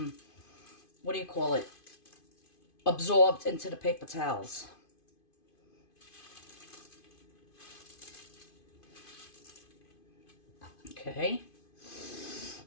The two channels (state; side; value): late; right; 2.5 ms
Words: do you call it? Absorbed into the paper towels. Okay.